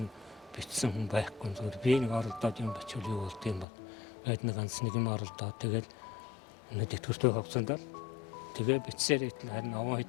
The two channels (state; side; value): drops out; right; at 3.7 s